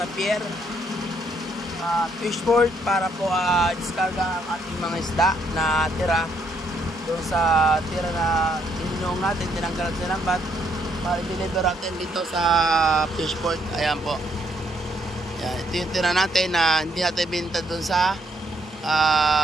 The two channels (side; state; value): both; normal; correlation 0.72